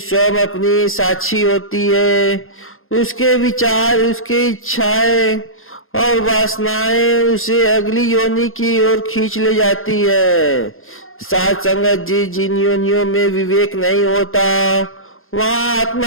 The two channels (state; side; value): late; right; 0.60 ms